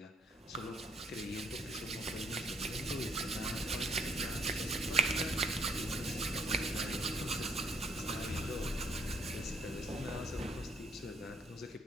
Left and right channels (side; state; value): both; normal; correlation 0.68